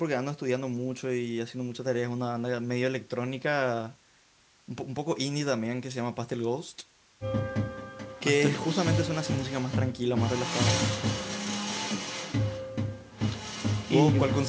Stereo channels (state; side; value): identical; both; correlation 1.00